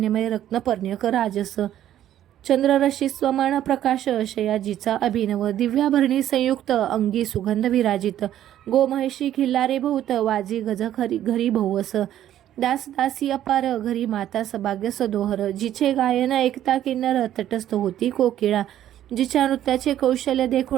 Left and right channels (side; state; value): left; quieter; 11.8 dB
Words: रत्नपर्ण्यक राजस. चंद्ररशी स्वमान प्रकाश शयाजीचा अभिनव. दिव्याभरणी संयुक्त अंगी सुगंध विराजित. गोमहिषी खिल्लारे बहुत वाजी गज घरी बहुवस. दास दासी अपार घरी माता सभाग्य सदोहर. जिचे गायन ऐकता किन्नर तटस्थ होती कोकिळा. जिच्या नृत्याचे कौशल्य